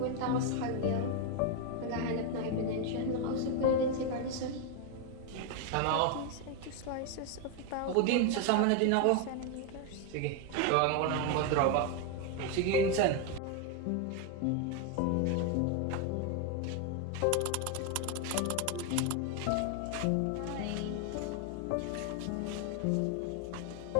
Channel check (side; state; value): both; different; correlation 0.01